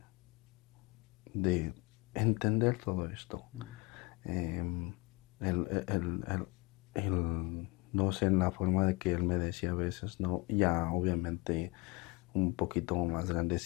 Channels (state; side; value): quieter; right; 26.4 dB